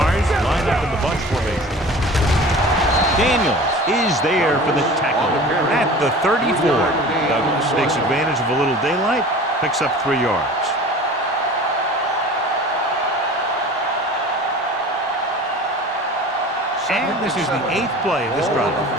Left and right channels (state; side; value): normal; both; correlation 0.40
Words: line up in the bunch formation. Daniels is there for the tackle at the 34. Douglas takes advantage of a little daylight, picks up 3 yards. And this is the 8th play of this drive.